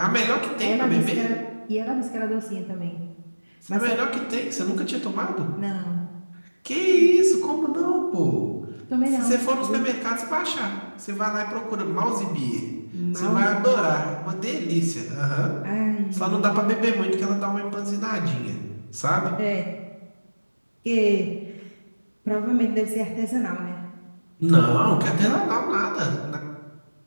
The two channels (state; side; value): inverted; both; correlation -1.00